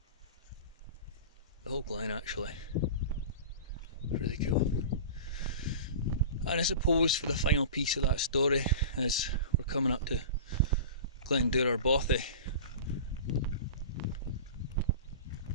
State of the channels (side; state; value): both; inverted; correlation -0.33